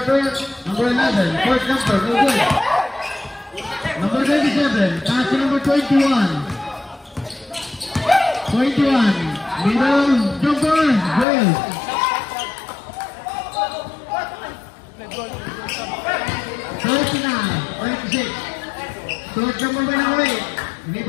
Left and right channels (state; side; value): drops out; right; at 11.2 s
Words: Number 11, fourth number, no good. Number 27, pass to number 21. 21, middle, jumper, good. 39, 26. Short number went away.